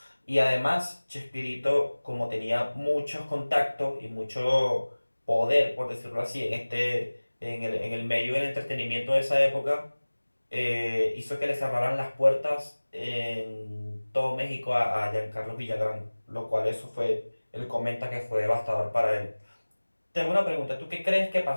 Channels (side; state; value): both; inverted; correlation -1.00